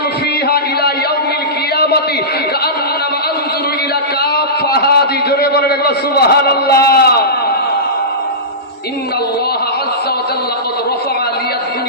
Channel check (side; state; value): both; normal; correlation -0.19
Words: ফিহা ইলা ইয়াউমিল কিয়ামাতি কাআন্নামা আনজুরু ইলা কাফাহাদি। জোরে বলেন একবার সুবহানাল্লাহ। ইন্নাল্লাহা আযজা ওয়া জাল্লা ক্বাদ রাফাআ লিয়াদ